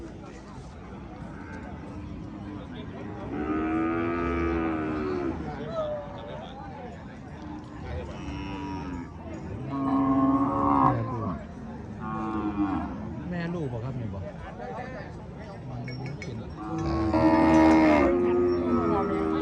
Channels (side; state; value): both; identical; correlation 1.00